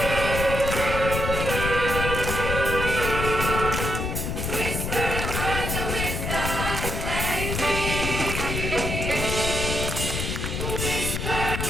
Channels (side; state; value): left; noise; rumble, 2 dB below the sound